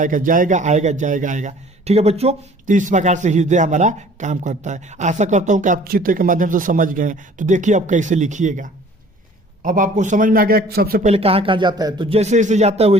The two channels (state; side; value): normal; both; correlation 0.51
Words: जाएगा आएगा, जाएगा आएगा। ठीक है बच्चों, तो इस प्रकार से हृदय हमारा काम करता है। आशा करता हूँ कि आप चित्र के माध्यम से समझ गए हैं। तो देखिए अब कैसे लिखिएगा। अब आपको समझ में आ गया सबसे पहले कहाँ कहाँ जाता है, तो जैसे जैसे जाता है